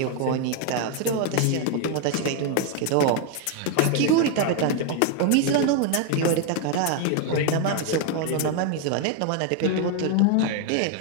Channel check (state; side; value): different; both; correlation 0.00